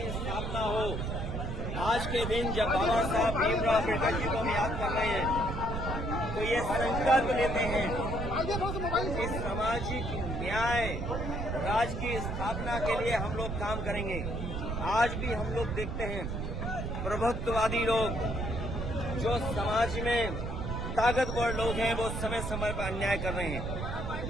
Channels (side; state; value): right; noise; rumble, 3 dB below the sound